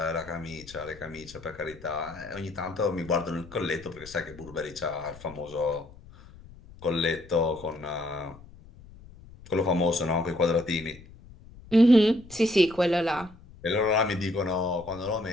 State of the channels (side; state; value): left; noise; rumble, 20 dB below the sound